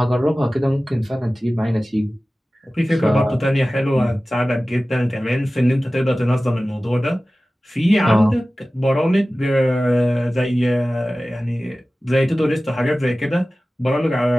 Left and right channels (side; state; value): both; normal; correlation 0.96